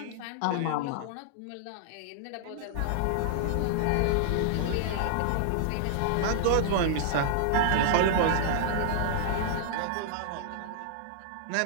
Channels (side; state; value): both; different; correlation -0.01